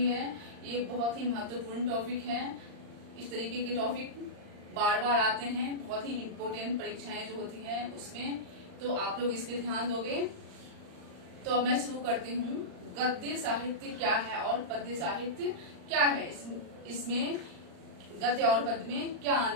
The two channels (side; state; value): left; late; 39 ms